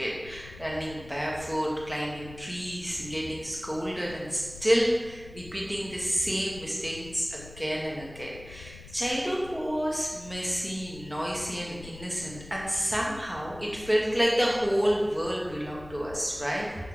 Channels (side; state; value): left; noise; rumble, 16 dB below the sound